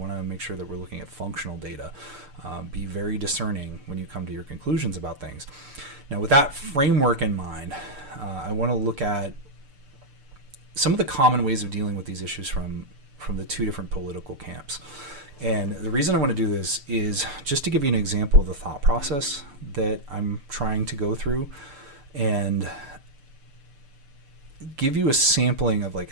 to make sure that we're looking at functional data. Be very discerning when you come to your conclusions about things. Now, with that framework in mind, I want to look at some of the common ways of dealing with these issues from the 2 different political camps. And the reason I want to do this is just to give you an example of the thought process that I'm trying to go through, and give you a sampling of like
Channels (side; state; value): left; late; 6.7 ms